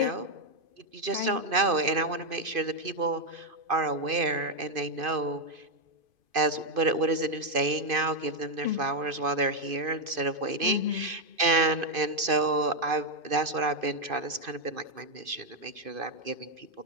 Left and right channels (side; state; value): left; late; 2.5 ms